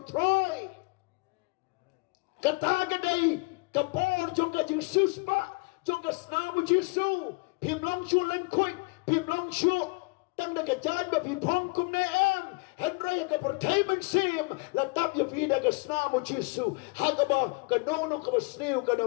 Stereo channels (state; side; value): quieter; right; 29.0 dB